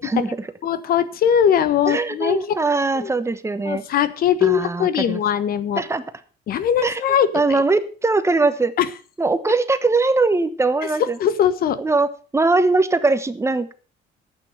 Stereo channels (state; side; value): normal; both; correlation 0.49